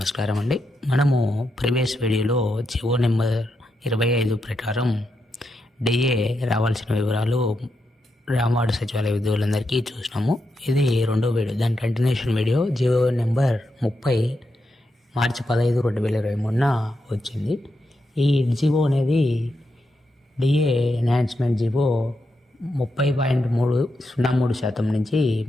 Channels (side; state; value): both; normal; correlation 0.84